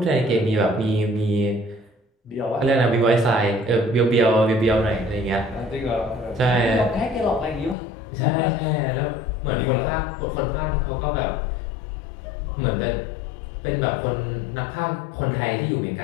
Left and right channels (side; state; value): right; drops out; at 7.8 s